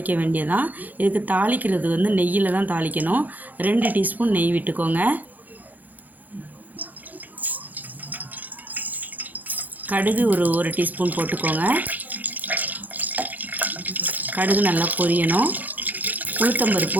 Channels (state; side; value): late; left; 0.082 ms